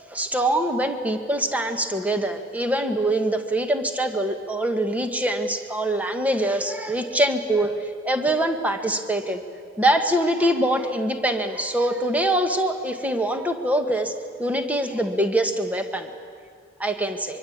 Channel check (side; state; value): both; normal; correlation 0.59